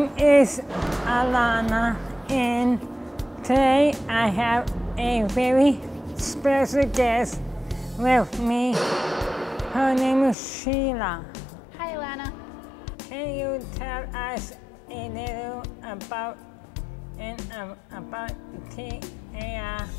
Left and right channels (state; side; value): drops out; right; at 10.4 s